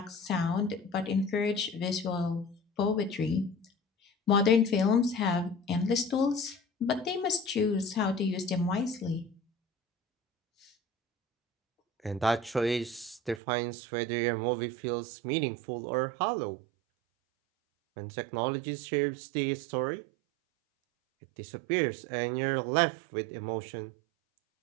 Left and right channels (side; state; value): left; drops out; at 13.4 s